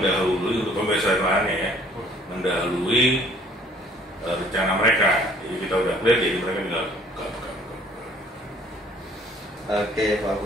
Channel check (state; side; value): normal; both; correlation 0.57